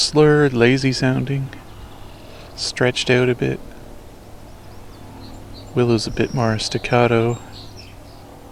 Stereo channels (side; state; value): both; identical; correlation 1.00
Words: lazy sounding, stretched out a bit. Willow's a bit more staccato.